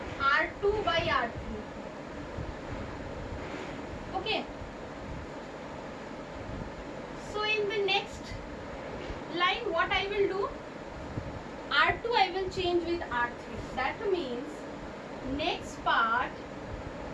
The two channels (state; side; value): identical; both; correlation 1.00